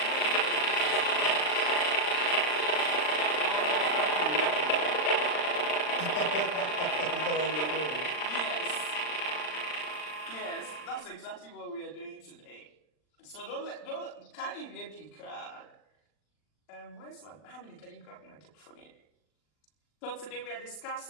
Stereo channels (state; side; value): late; right; 39 ms